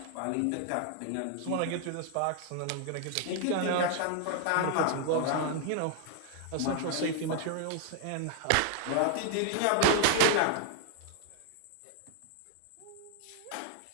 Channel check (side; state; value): both; different; correlation 0.00